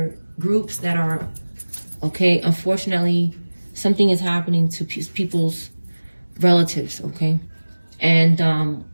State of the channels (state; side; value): inverted; both; correlation -1.00